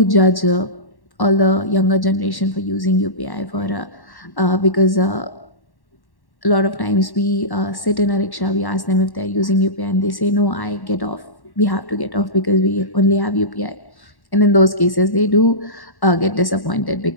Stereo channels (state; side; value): late; right; 1.1 ms